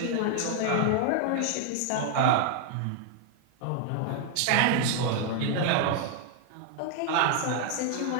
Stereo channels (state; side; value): different; both; correlation 0.00